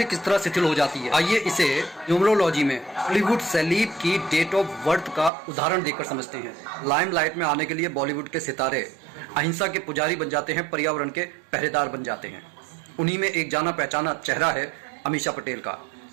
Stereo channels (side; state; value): left; drops out; at 5.3 s